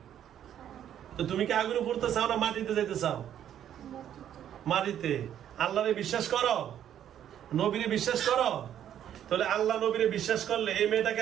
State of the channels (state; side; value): quieter; left; 10.3 dB